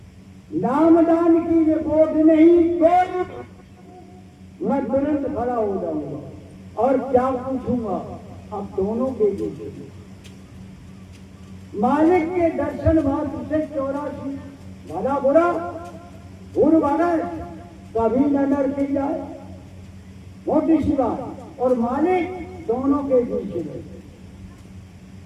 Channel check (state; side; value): identical; both; correlation 1.00